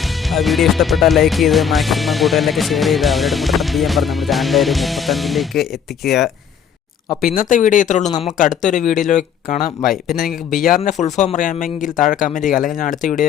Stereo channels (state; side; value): quieter; right; 7.7 dB